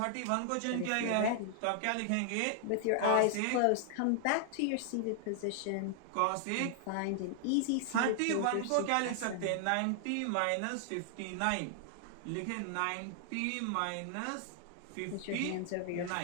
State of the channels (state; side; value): different; both; correlation 0.00